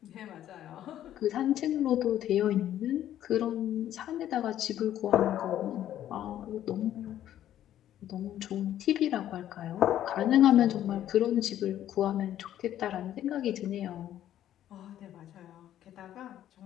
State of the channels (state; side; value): quieter; right; 11.8 dB